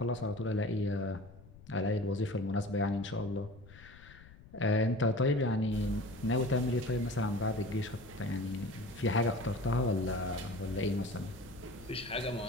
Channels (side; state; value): left; noise; rumble, 20 dB below the sound